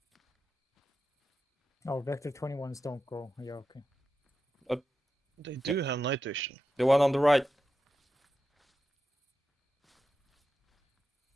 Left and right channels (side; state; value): both; normal; correlation 0.90